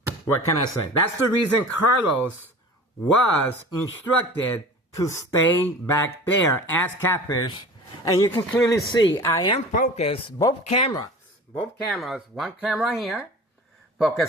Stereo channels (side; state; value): both; normal; correlation 0.39